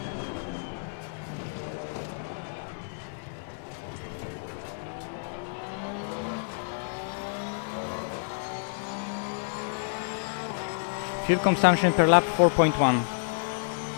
Fuel consumption per lap 4.1.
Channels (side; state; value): right; silent; digital silence